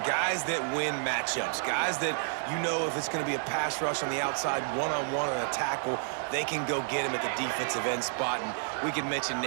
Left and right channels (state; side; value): silent; left; digital silence